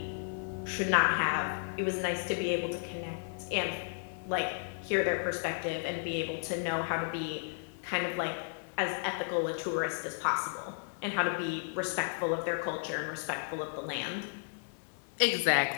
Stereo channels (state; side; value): silent; right; 55 dB below the other